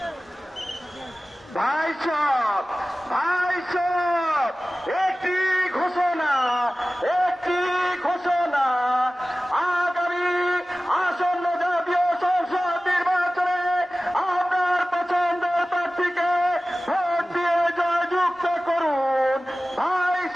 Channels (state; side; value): normal; both; correlation 0.97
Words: ভাইসব একটি ঘোষণা আগামী আসন্ন জাতীয় সংসদ নির্বাচনে আপনার পছন্দের প্রার্থীকে ভোট দিয়ে জয়যুক্ত করুন।